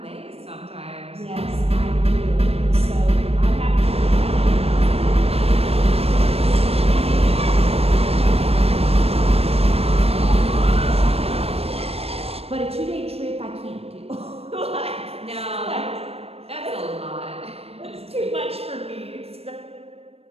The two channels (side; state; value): left; late; 0.29 ms